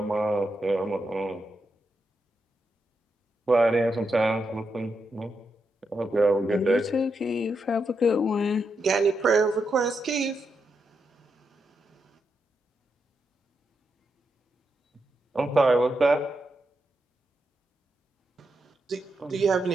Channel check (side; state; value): both; normal; correlation 0.84